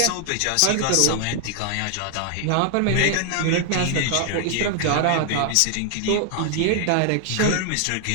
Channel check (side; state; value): both; different; correlation 0.00